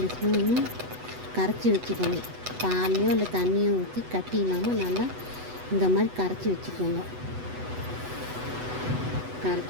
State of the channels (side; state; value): left; late; 8.1 ms